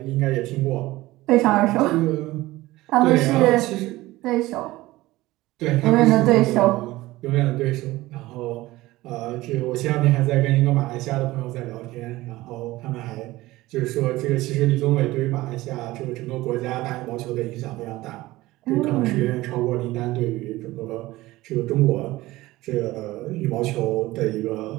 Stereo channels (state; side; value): quieter; left; 18.2 dB